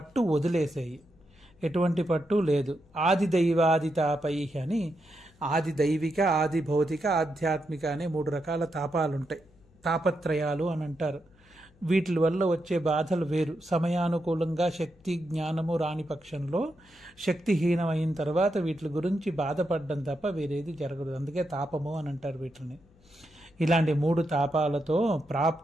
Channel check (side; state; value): left; noise; hum, 30 dB below the sound